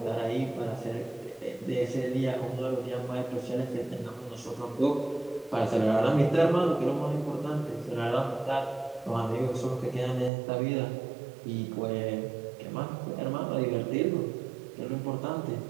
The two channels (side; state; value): left; drops out; at 10.3 s